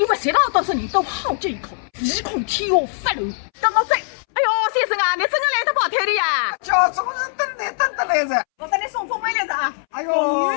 为谁让多少人都好这一口，唯恐天下发怒。等我走。哎呦，先生啊，你真的来得跑腿的呀？叫总是等得来噻。我给你送封面来着啊！哎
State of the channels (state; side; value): silent; right; 65 dB below the other